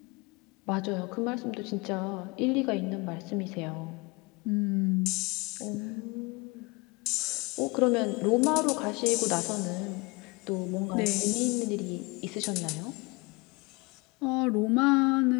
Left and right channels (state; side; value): quieter; right; 26.2 dB